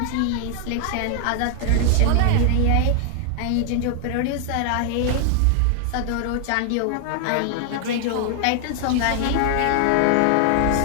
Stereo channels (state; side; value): different; both; correlation 0.00